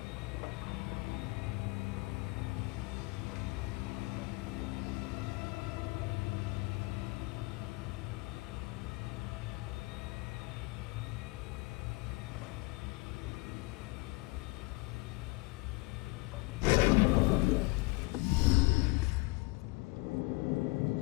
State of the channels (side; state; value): right; quieter; 24.5 dB